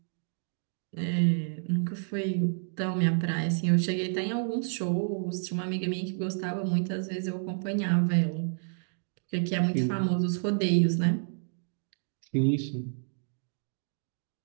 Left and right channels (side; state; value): left; silent; digital silence